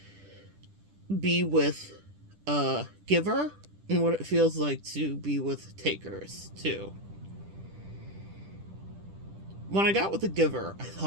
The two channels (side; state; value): left; late; 10 ms